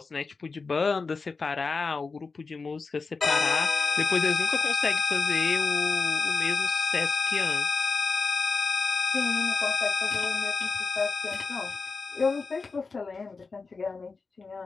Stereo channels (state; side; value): quieter; right; 4.4 dB